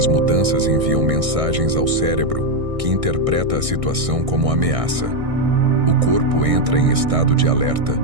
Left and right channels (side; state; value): left; late; 1.6 ms